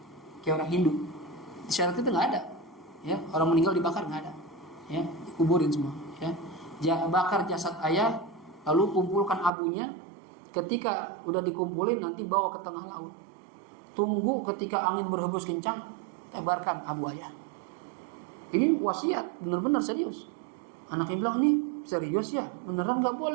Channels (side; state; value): left; drops out; at 9.5 s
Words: Kayak orang Hindu. Syariat itu enggak ada. Ya, orang meninggal dibakar enggak ada. Ya, dikuburin semua, ya. Bakar jasad ayah, lalu kumpulkan abunya. Ketika udah dikumpulin nanti bawa ke tengah laut. Tunggu ketika angin berhembus kencang, tebarkan abu ayah. Ini wasiat, benar-benar serius. Anaknya bilang, "Ini serius ya? Beneran nggak